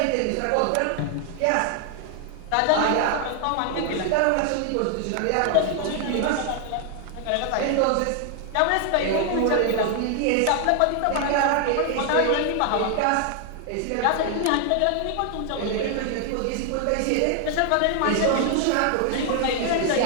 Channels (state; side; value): different; both; correlation 0.00